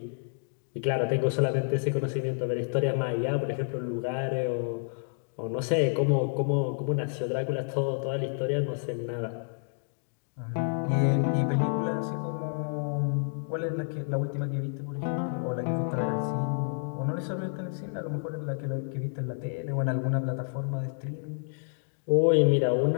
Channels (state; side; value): silent; right; digital silence